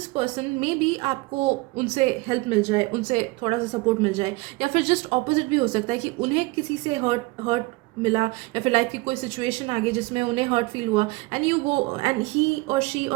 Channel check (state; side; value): quieter; left; 23.2 dB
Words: person, maybe आपको उनसे हेल्प मिल जाए, उनसे थोड़ा सा सपोर्ट मिल जाए. या फिर जस्ट ऑपोजिट भी हो सकता है कि उन्हें किसी से हर्ट मिला, या फिर लाइफ की कोई सिचुएशन आ गई जिसमें उन्हें हर्ट फील हुआ, and you go and he और शी